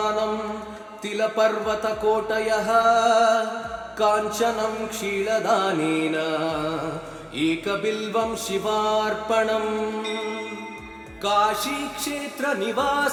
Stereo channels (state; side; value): identical; both; correlation 1.00